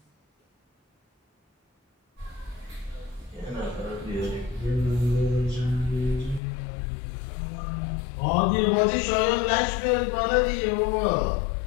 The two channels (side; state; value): right; drops out; at 6.4 s